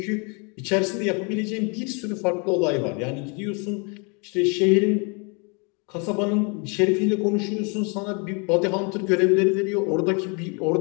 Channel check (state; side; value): quieter; right; 33.7 dB